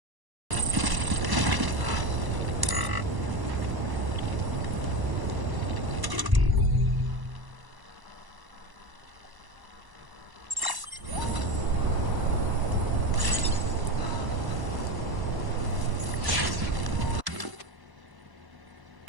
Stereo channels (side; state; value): left; late; 1.0 ms